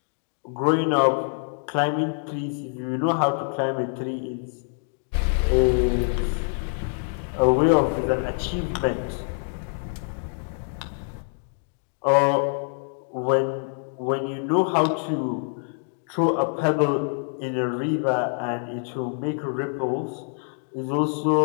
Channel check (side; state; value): right; silent; 57 dB below the other